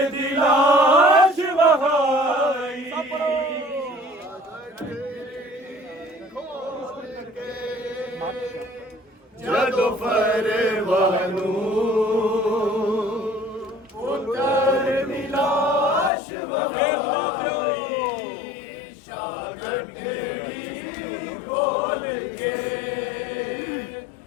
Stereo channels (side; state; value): right; drops out; at 16.1 s